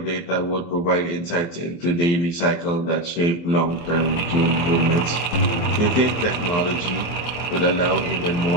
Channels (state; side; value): late; right; 23 ms